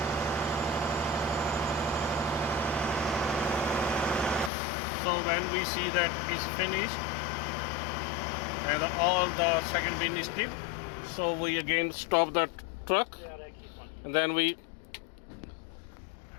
We see that is finished and all the second bin is tipped, so we again stop the truck and then we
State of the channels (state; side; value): drops out; right; at 4.5 s